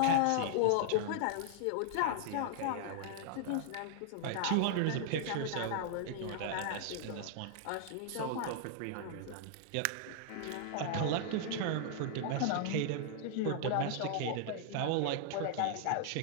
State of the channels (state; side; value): different; both; correlation -0.01